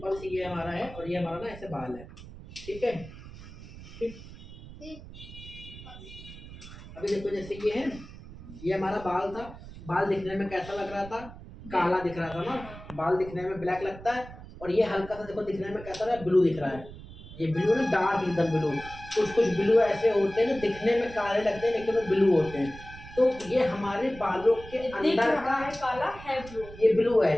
सी ये हमारा है और ये हमारा ना ऐसे बाल है। ठीक है, ठीक। अभी देखो जैसे ये है, ये हमारा बाल था, बाल दिखने में कैसा लग रहा था, काला दिख रहा था ना, बाल दिखने में ब्लैक लगता है। और ये हल्का सा देखो दिखने में कैसा रहा है, ब्लू दिख रहा है। ये ब्लू ना डार्क एकदम ब्लू। कुछ कुछ ब्लू ऐसे होते हैं ना दिखने में काले लगते हैं लेकिन वो ब्लू होते हैं। तो ये हमारे बालों के अंदर का है काला है ब्लू, ये ब्लू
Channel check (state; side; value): noise; right; rumble, 15 dB below the sound